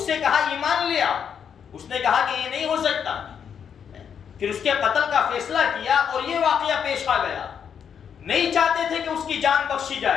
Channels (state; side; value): quieter; right; 7.7 dB